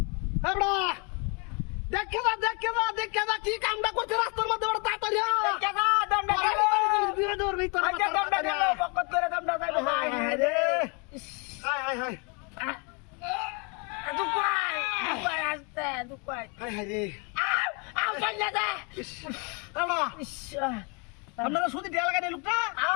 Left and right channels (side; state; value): right; quieter; 33.3 dB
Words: এবড়া দেখে যা কি কামটা করতে রাস্তার মধ্যে বড় তাড়াতাড়ি দেখে যা দমটা গেল বিরে দৌড় নেই তোর আচ্ছা দমটা গেল বকত করে দমটা যাইবে হাই হাই রে হাই হাই হাই দুপাই আসতে দুপাই হাই হাই রে আউ চলে দে এবড়া আপনারা সুদি দেয়া লাগা দেই লোকটা